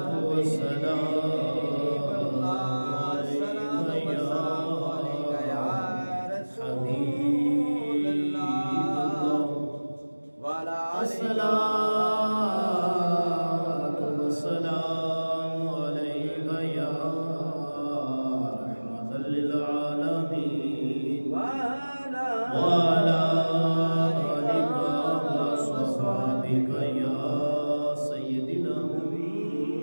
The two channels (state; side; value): inverted; both; correlation -1.00